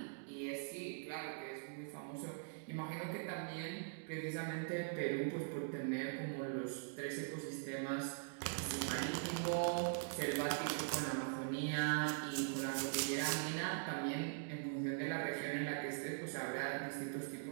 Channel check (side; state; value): left; silent; digital silence